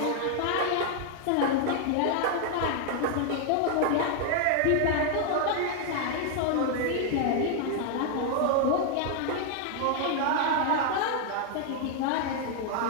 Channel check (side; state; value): both; different; correlation 0.00